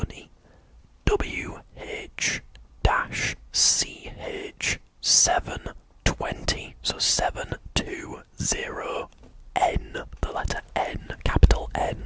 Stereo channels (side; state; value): both; identical; correlation 1.00